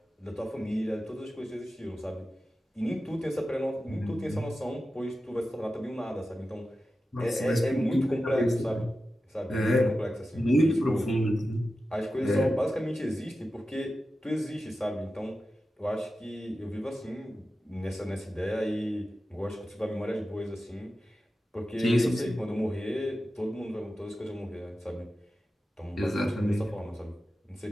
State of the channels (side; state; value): both; normal; correlation 0.92